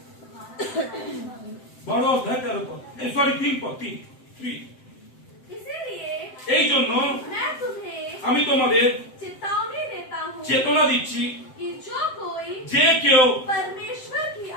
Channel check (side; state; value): right; late; 7.8 ms